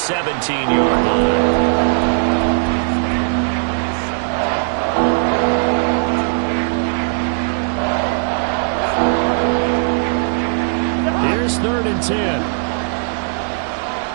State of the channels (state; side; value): silent; left; digital silence